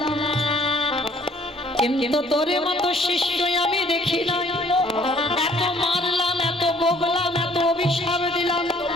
কিন্তু তোরে মতো শিষ্য আমি দেখি না, এত মারলাম এত বগলাম এত অভিশাপ দিলাম,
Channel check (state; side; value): normal; both; correlation 0.59